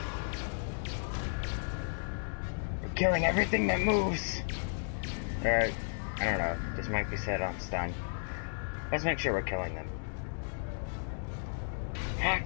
We're killing everything that moves. I don't know, this might be said on stun. Let's make sure we're killing them.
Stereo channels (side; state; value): right; silent; digital silence